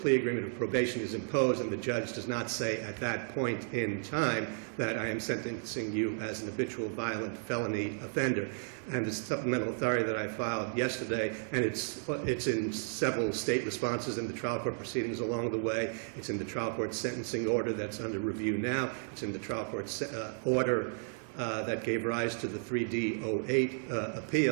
agreement of probation is imposed, and the judge does not say at that point in time that I am sentencing you as an habitual violent felony offender. And the supplemental authority that I filed yesterday, and it's in several state responses in the trial court proceedings along the way. It's in the trial court sentencing order that's under review now. It's in the trial court order that gave rise to the 3D08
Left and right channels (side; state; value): left; silent; 55 dB below the other